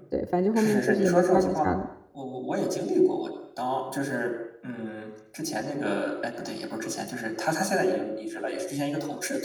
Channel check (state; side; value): identical; both; correlation 1.00